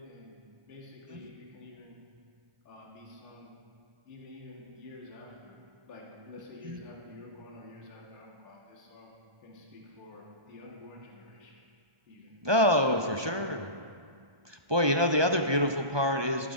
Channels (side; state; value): left; late; 1.2 ms